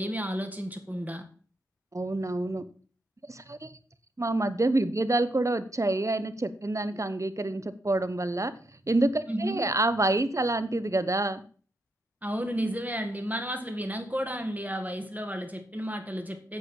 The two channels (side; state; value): both; normal; correlation 0.80